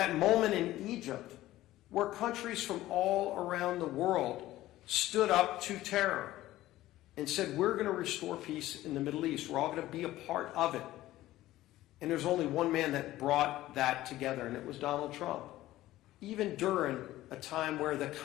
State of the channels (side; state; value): right; quieter; 15.6 dB